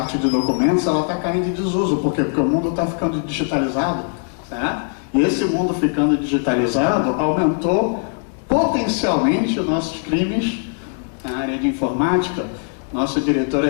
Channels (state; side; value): quieter; right; 39.5 dB